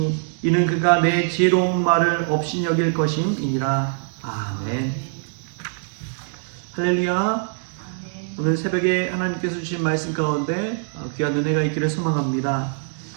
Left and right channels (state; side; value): silent; left; 59 dB below the other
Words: 이는 그가 내 지혜로운 말을 업신여길 것임이니라. 아멘. 할렐루야. 오늘 새벽에 하나님께서 주신 말씀 가운데 귀한 은혜가 있기를 소망합니다.